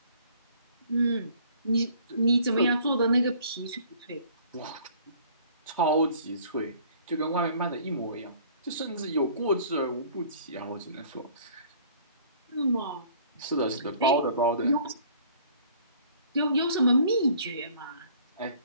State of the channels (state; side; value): inverted; both; correlation -0.54